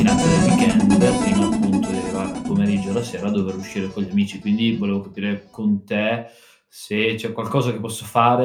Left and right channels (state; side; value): identical; both; correlation 1.00